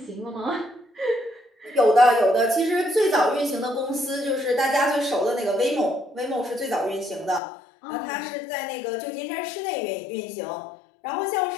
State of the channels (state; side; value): drops out; right; at 7.4 s